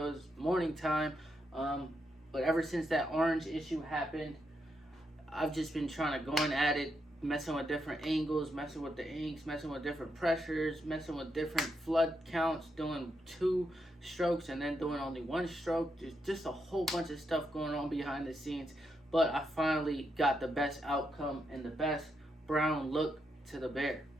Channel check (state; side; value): normal; both; correlation 0.82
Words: It was morning time. But ever since that orange issue happened, I've just been trying to go in at it, messing with different angles, messing with the inks, messing with different pressures, messing with different flood counts, doing 2 strokes and then doing only 1 stroke. There's just a whole bunch of stuff going on behind the scenes. But I finally got the best outcome and the best brown look to the bear.